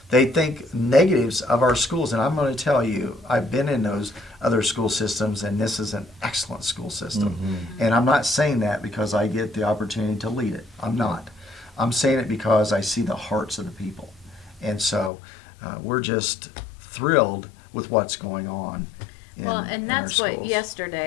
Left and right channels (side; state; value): right; drops out; at 15.1 s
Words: They think negatives of our schools, and I'm going to tell you, I've been in those other school systems, and this is an excellent school system. And I'm not saying that because I get the opportunity to lead it. I'm not. I'm saying it because I see the hearts of the people. And so we're just thrilled with what's going on. Well, and in that's our what schools.